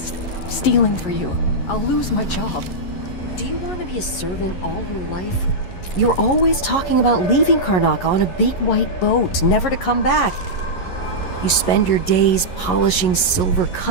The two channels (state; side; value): late; right; 11 ms